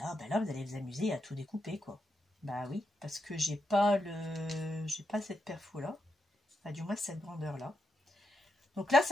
allez vous amuser à tout découper, quoi. Bah oui, parce que j'ai pas cette perfo là. Enfin, du moins cette grandeur là. Donc là,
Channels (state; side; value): normal; both; correlation 0.84